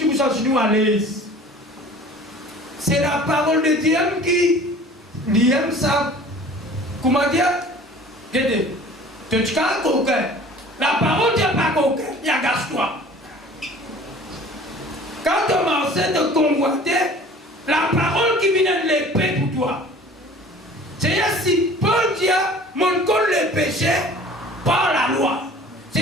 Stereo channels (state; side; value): normal; both; correlation 0.46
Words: vous sens nous à l'aise. C'est la parole de Dieu qui aime ça. Comment dire? Regardez, tu es un coquin. La parole de Dieu n'est pas coquin, il y a gâche-toi. Quand on m'a enseigné de convoiter, la parole qui vient de l'épée pour toi. C'est-à-dire si bon Dieu mon compte le péché par la loi.